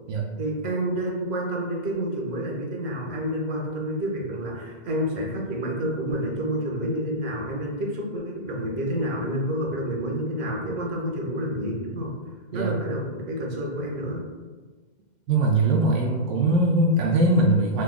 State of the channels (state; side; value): late; right; 2.1 ms